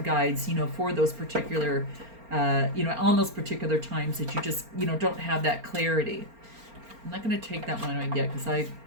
guides, for those particular, on those particular times that you just, don't have that clarity. I'm not going to take that one yet because I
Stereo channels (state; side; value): late; left; 4.3 ms